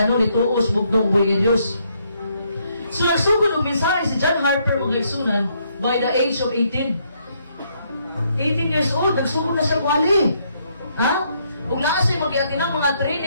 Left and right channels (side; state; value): both; inverted; correlation -0.72